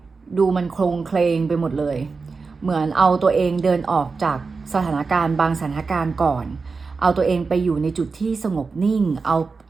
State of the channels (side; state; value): left; quieter; 4.5 dB